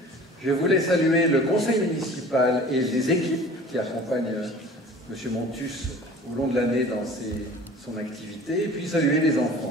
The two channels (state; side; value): normal; both; correlation 0.44